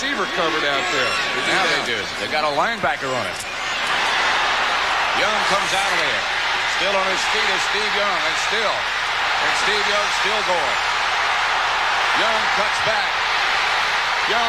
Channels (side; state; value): both; identical; correlation 1.00